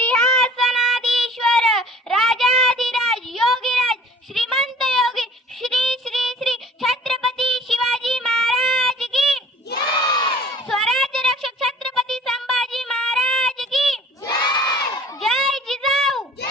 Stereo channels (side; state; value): both; normal; correlation 0.50